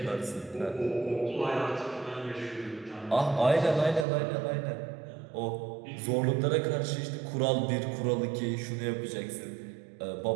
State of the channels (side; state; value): left; drops out; at 4.0 s